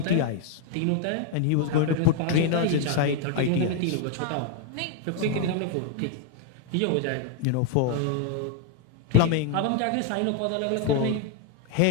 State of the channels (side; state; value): both; different; correlation 0.00